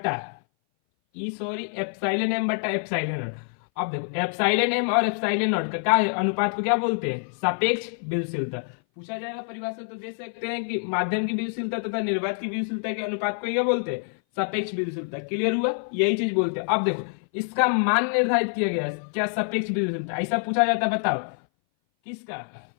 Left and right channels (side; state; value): right; silent; 58 dB below the other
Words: एप्सिलॉन एम बट्टा एप्सिलॉन नॉट। अब देखो एप्सिलॉन एम और एप्सिलॉन नॉट का क्या है, अनुपात को क्या बोलते हैं, सापेक्ष विद्युतशीलता। पूछा जाएगा परिभाषा तो दे सकते हैं कि माध्यम की विद्युतशीलता तथा निर्वात की विद्युतशीलता के अनुपात को क्या बोलते हैं, सापेक्ष विद्युतशीलता। क्लियर हुआ, यही चीज बोलते हैं। अब देखो इसका मान निर्धारित किया गया है क्या, सापेक्ष विद्युतशीलता। ऐसा पूछा जाता है, बताओ किसका,